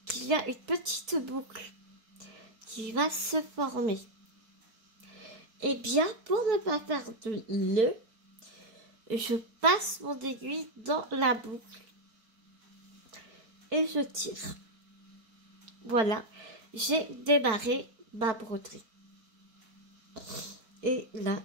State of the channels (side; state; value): left; late; 4.6 ms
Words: qu'il y a une petite boucle qui va se former. Et bien, pour ne pas faire de nœud, je passe mon aiguille dans la boucle et je tire. Voilà, j'ai démarré ma broderie. Et là,